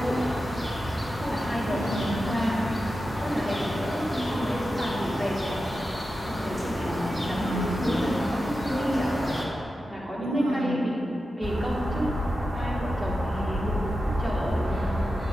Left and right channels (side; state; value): both; normal; correlation 0.91